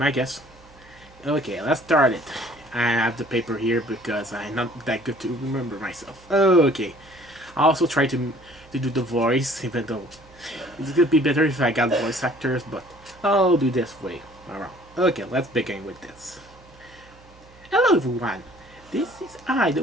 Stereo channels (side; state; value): right; noise; hum, 25 dB below the sound